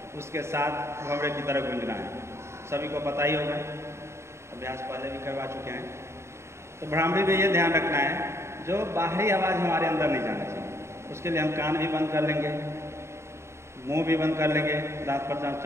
उसके साथ भंवरे की तरफ गूंजना है। सभी को पता ही होगा, अभ्यास पहले भी करवा चुके हैं। तो भ्रामरी में ये ध्यान रखना है जो बाहरी आवाज़ हमारे अंदर नहीं जाना चाहिए। उसके लिए हम कान भी बंद कर लेंगे, मुंह भी बंद कर लेंगे, दांत पर दांत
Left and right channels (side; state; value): left; late; 0.13 ms